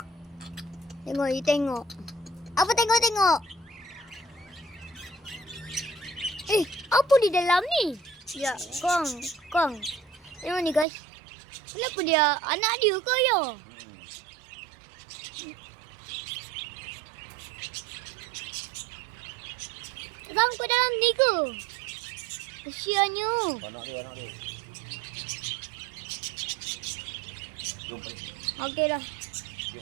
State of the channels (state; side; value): drops out; left; at 10.9 s